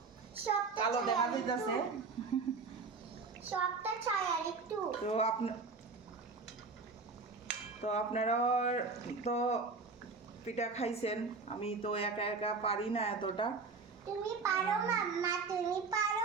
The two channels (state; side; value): quieter; left; 4.4 dB